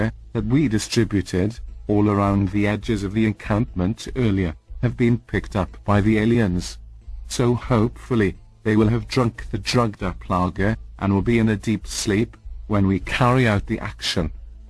that we distributed all around the edges of the encampment earlier have been picked up by the aliens. So hopefully they will have drunk the drugged up lager and will be in a deep sleep when we carry out the action.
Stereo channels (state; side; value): identical; both; correlation 1.00